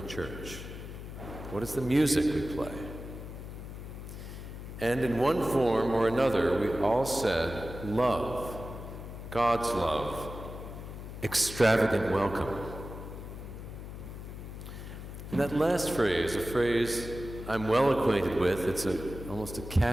church? What is the music we play? And in one form or another, we all said, love, God's love, extravagant welcome. And that last phrase, a phrase I'm well acquainted with, it's almost a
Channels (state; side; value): noise; left; hum, 10 dB below the sound